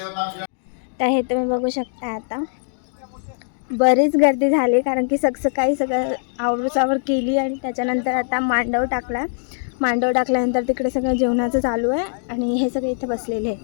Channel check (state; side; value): silent; right; digital silence